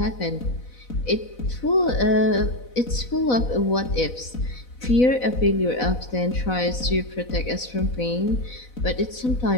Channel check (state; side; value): late; right; 4.0 ms